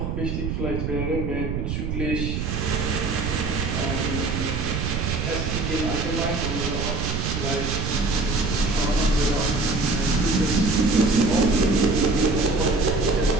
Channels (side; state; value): right; noise; rumble, 2 dB below the sound